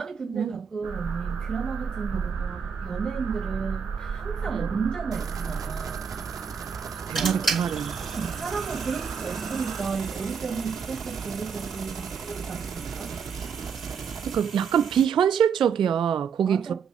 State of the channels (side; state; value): left; quieter; 6.7 dB